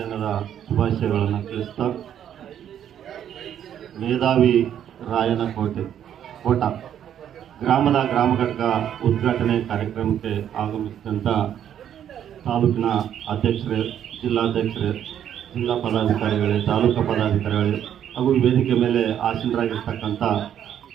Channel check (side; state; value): left; quieter; 9.9 dB